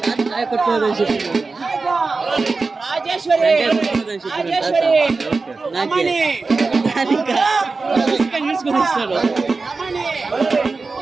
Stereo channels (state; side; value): quieter; left; 4.0 dB